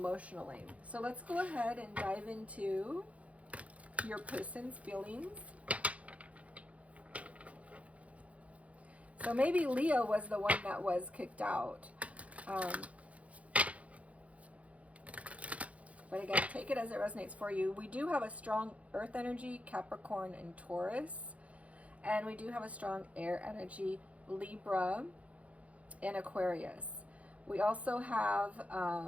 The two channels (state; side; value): late; left; 0.065 ms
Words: So let's go ahead and dive into your person's feelings. So maybe Leo was the one that was kicked out. But again, take it as it resonates for you. We do have a strong earth energy, Capricorn and Taurus. And we do have a strong air energy, Libra and Aquarius. We also have